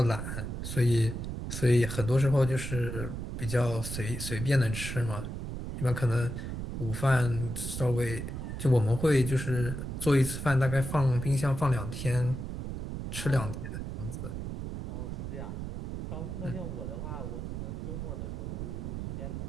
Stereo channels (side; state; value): right; noise; rumble, 5 dB below the sound